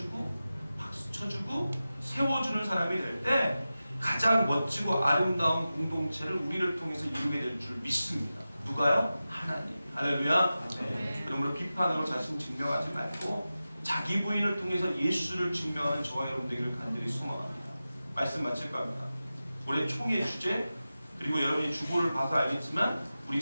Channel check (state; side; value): inverted; both; correlation -0.94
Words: 박수 쳐주고 세워주는 사람이 될 때 가장 멋지고 아름다운 공동체를 우리를 통해서 이루게 될 줄 믿습니다. 누가요? 하나님. 할렐루야. 네. 그러므로 비판으로 자신 증명하지 말고 자기 부인을 통해서 예수를 증명하는 저와 여러분 되기를 간절히 소망합니다. 말씀 마칠까 합니다. 올해 총회 주제 그리고 여러분이 주보를 봐서 알겠지만 우리